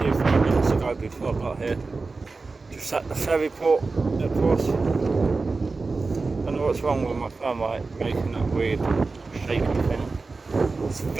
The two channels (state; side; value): quieter; left; 3.9 dB